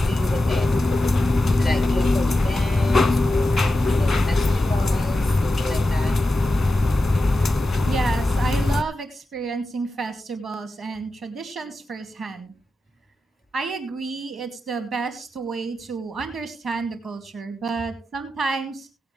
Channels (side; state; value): both; normal; correlation 0.91